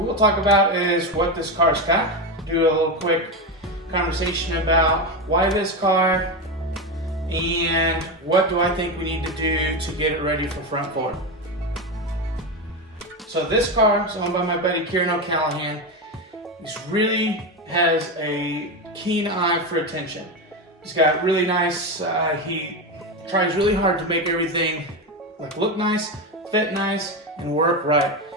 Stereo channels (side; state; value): both; normal; correlation 0.15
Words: talk about is what this car's got. Do a little quick conversation about why this car and what do I think we need to do to get it ready for front forward. So this car is owned by my buddy Kieran O'Callahan. He really has a keen eye for attention. He's got really nice, he tries really hard to make everything look nice, fit nice, and work right.